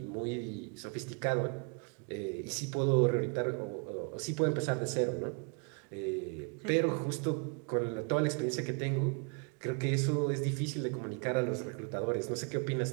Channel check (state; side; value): quieter; left; 36.0 dB